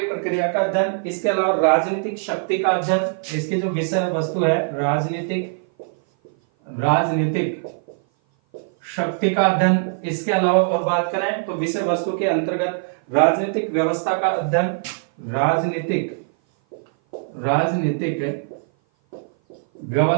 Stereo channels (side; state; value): left; silent; 57 dB below the other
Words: प्रक्रिया का अध्ययन। इसके अलावा राजनीतिक शक्ति का अध्ययन, इसकी जो विषय वस्तु है राजनीतिक शक्ति का अध्ययन। इसके अलावा और बात करें तो विषय वस्तु के अंतर्गत राजनीतिक व्यवस्था का अध्ययन, राजनीतिक